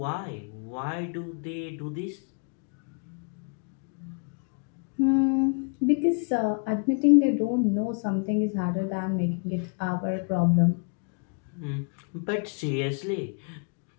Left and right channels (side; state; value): right; quieter; 38.6 dB